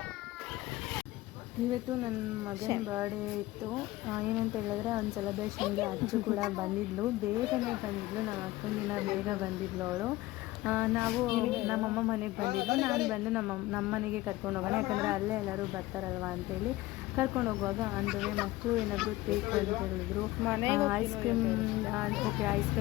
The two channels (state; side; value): quieter; right; 18.1 dB